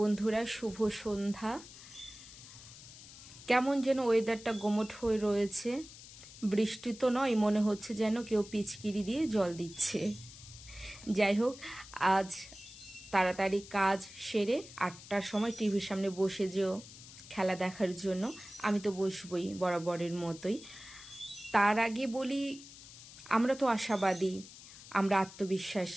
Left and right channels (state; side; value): noise; left; hiss, 17 dB below the sound